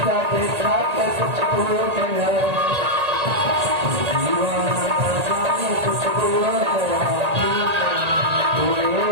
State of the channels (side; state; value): left; late; 1.8 ms